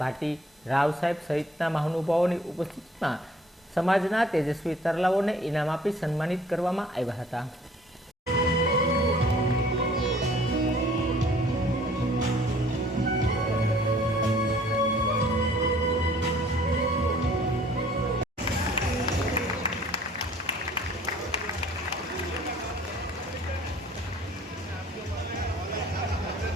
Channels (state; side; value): normal; both; correlation 0.55